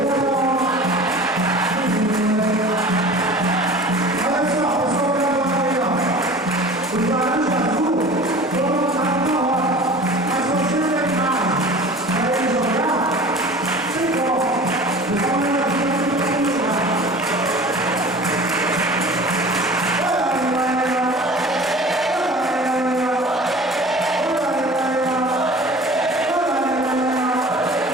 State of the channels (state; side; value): normal; both; correlation 0.41